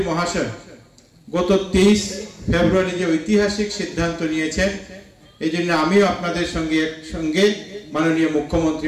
মহাশয় গত 23 ফেব্রুয়ারি যে ঐতিহাসিক সিদ্ধান্ত নিয়েছেন, এই জন্য আমিও আপনাদের সঙ্গে মাননীয় মুখ্যমন্ত্রী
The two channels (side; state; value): both; identical; correlation 1.00